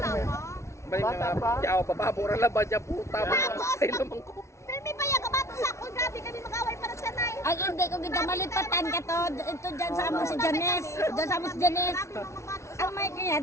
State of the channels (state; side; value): late; right; 0.14 ms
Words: Balik Bata na pa. yaw papabura la ba dyan puta. Ay naman ko. Filmi pa yan, kabato sa ako. Grabe kami mag-away para sa nay. Ay, hindi ko kita malipatan ka to. Ito dyan sa amo si Janice. Dyan sa amo si Janice. Ang may kanya,